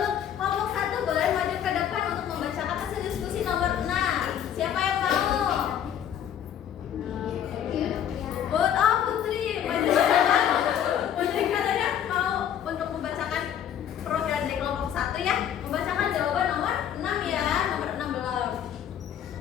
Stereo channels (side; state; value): right; quieter; 9.7 dB